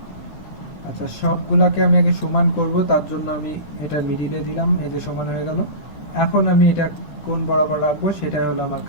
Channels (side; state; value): right; late; 13 ms